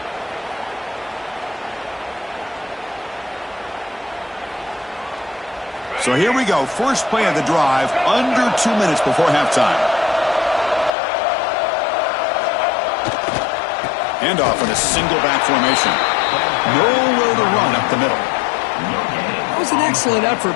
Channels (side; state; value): right; drops out; at 10.9 s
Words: So here we go. First play of the drive, under 2 minutes before halftime. Handoff in a single back formation. Nowhere to run up the middle. That was an excellent